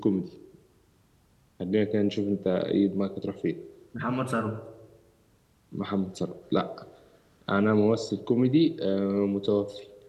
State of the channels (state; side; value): identical; both; correlation 1.00